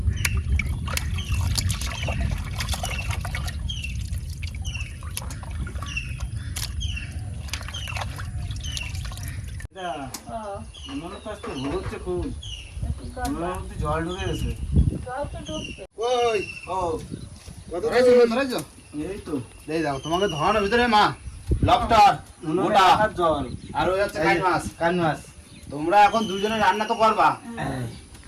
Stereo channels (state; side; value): identical; both; correlation 1.00